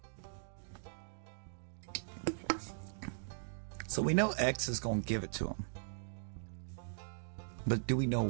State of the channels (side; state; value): left; silent; digital silence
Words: So we know X is going to give it to him. But do you